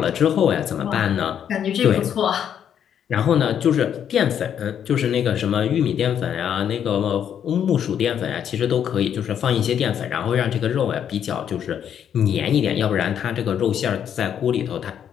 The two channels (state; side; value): quieter; right; 9.0 dB